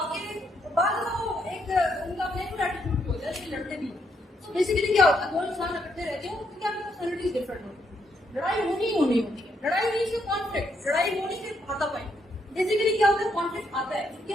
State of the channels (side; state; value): both; normal; correlation 0.76